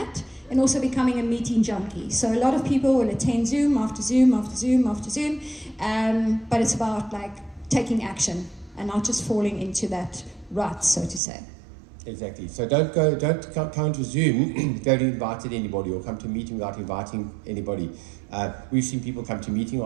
and also becoming a meeting junkie. So a lot of people will attend Zoom after Zoom after Zoom after Zoom, but it's about like taking action and not just falling into that rut, so to say. Exactly. So don't come to Zoom if you haven't invited anybody, or come to a meeting without inviting anybody. We've seen people come to meeting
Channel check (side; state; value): left; drops out; at 11.2 s